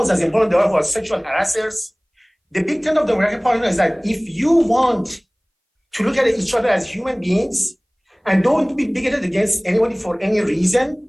as important they are for sexual harassers. The Big Tent of the American Party is that if you want to look at each other as human beings and don't be bigoted against anybody for any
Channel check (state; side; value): identical; both; correlation 1.00